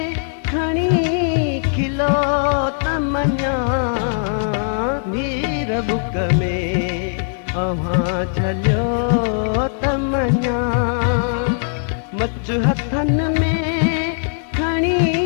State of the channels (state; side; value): silent; right; 66 dB below the other